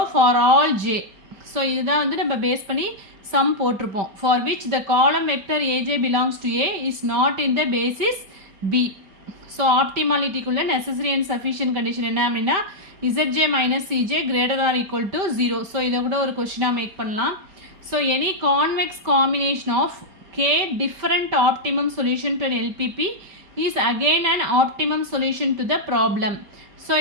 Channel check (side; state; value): left; late; 5.1 ms